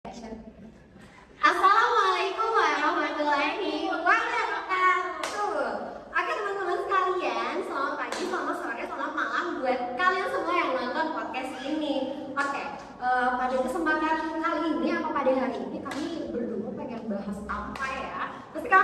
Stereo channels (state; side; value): identical; both; correlation 1.00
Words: Assalamualaikum warahmatullahi wabarakatuh. Oke teman-teman sekalian, selamat pagi, selamat sore, selamat malam buat kalian semua yang nonton podcast ini. Oke, pada kesempatan kali ini atau pada hari ini kami berdua pengen bahas apa ya? Pasti